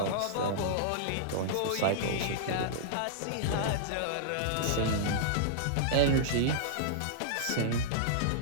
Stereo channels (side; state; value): both; different; correlation -0.02